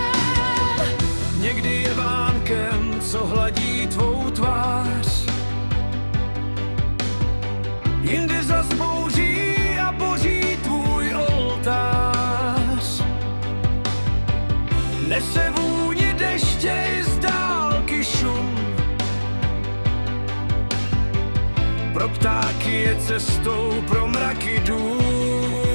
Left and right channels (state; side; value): inverted; both; correlation -1.00